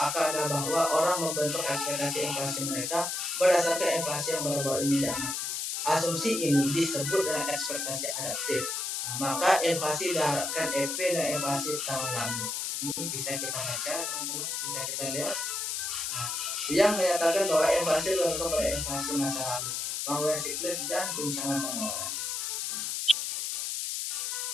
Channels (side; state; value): left; noise; hiss, 2 dB below the sound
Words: adalah bahwa orang membentuk ekspektasi inflasi mereka berdasarkan inflasi yang baru-baru ini diamati. Asumsi ini disebut dengan ekspektasi adaptif. Maka inflasi diharapkan EP dan inflasi tahun lalu. Ini bisa kita baca, teman-teman, bisa kita lihat. Yang menyatakan bahwa inflasi bergantung pada inflasi masa lalu, penggunaan siklus dan guncangan penawaran.